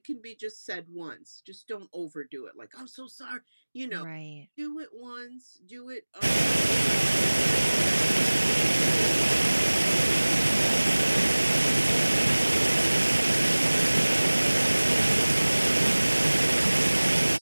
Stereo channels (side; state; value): both; inverted; correlation -1.00